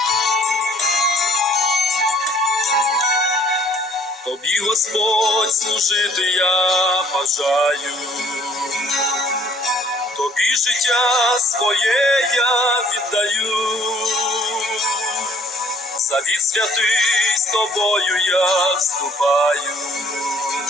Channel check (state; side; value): normal; both; correlation 0.59